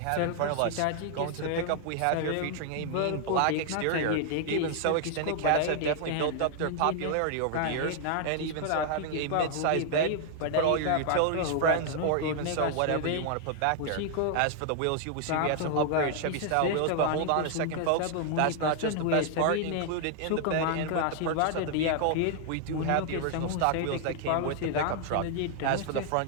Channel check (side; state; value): both; different; correlation 0.00